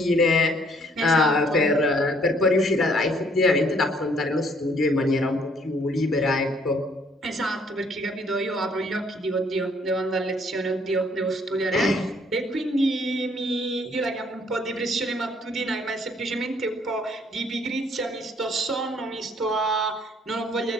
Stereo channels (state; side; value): normal; both; correlation 0.64